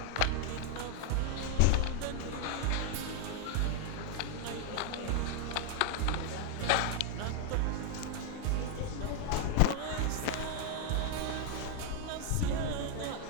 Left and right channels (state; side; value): different; both; correlation 0.01